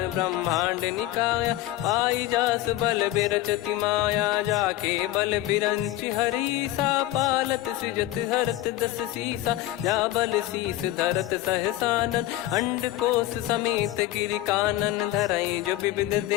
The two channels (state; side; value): quieter; right; 15.4 dB